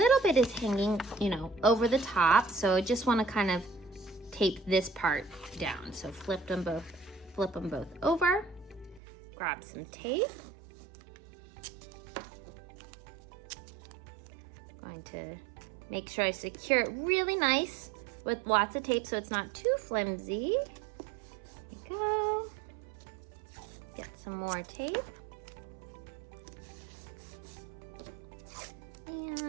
bit is hanging, over the top. So I just want to kind of tape this part down. So flip them both over. Grab some tape. Going to make sure I secure it really nice with lots of tape so it's not too flimsy. There you go. Get some more tape.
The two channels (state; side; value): drops out; left; at 9.0 s